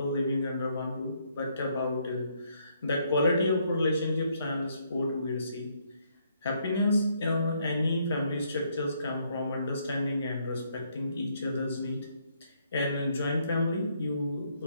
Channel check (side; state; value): both; inverted; correlation -0.71